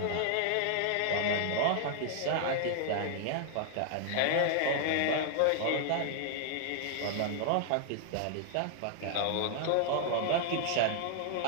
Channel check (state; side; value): different; both; correlation 0.00